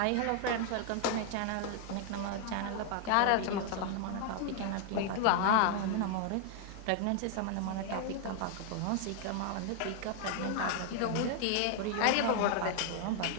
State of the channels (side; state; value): both; different; correlation 0.00